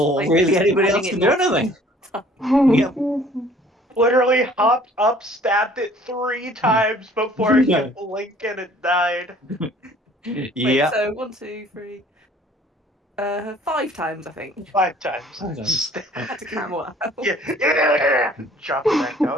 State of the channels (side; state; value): both; normal; correlation 0.54